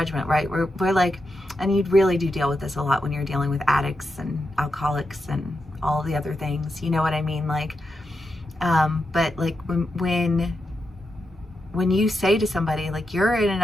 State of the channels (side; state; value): both; normal; correlation 0.87